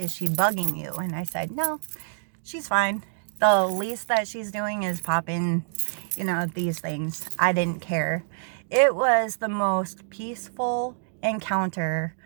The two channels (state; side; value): silent; left; digital silence